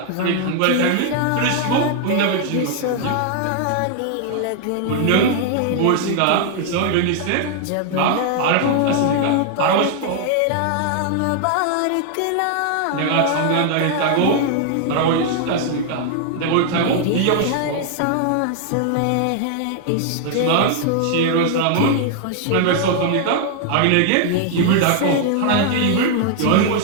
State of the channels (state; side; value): different; both; correlation 0.00